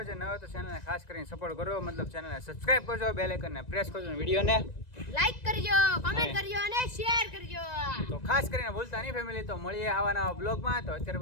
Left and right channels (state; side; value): late; right; 1.9 ms